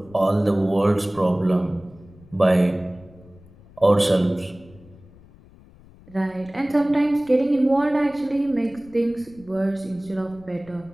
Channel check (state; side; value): noise; left; rumble, 24 dB below the sound